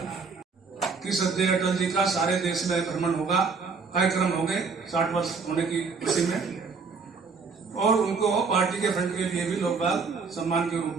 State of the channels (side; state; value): left; quieter; 4.9 dB